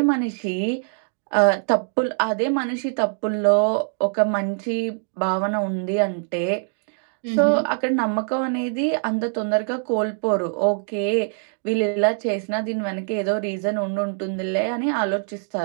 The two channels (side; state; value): left; silent; digital silence